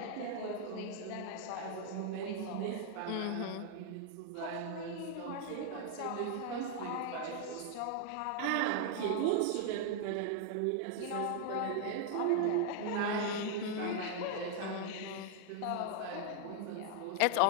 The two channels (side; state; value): both; different; correlation 0.00